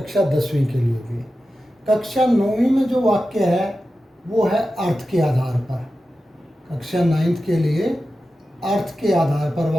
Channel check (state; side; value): normal; both; correlation 0.92